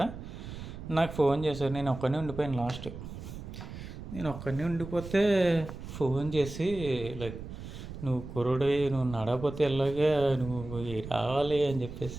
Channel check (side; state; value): right; noise; rumble, 11 dB below the sound